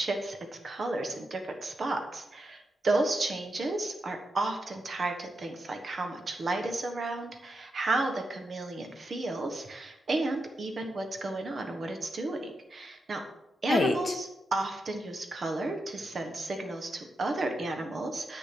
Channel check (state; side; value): normal; both; correlation 0.86